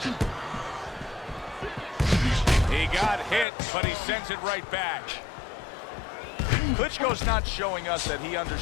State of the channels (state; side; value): drops out; right; at 3.5 s